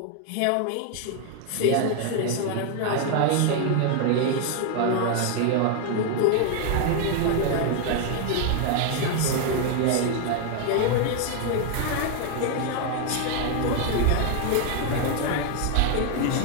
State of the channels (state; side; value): different; both; correlation 0.00